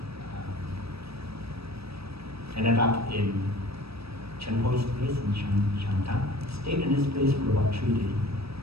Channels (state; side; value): late; left; 0.78 ms